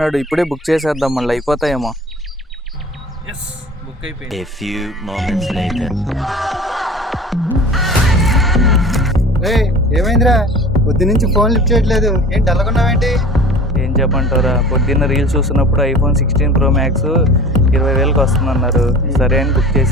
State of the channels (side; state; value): both; normal; correlation 0.41